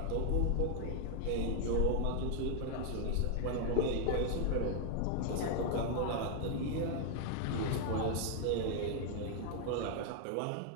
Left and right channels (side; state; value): both; different; correlation 0.00